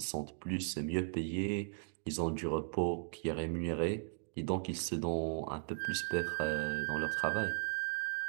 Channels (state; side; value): silent; left; digital silence